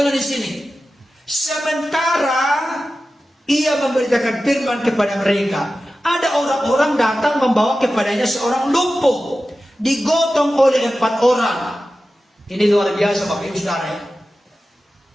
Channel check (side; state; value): both; normal; correlation 0.94